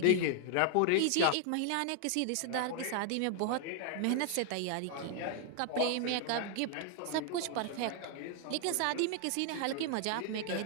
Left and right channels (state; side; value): different; both; correlation 0.00